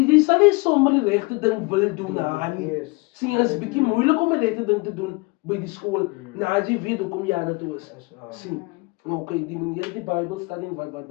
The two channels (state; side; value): quieter; right; 26.5 dB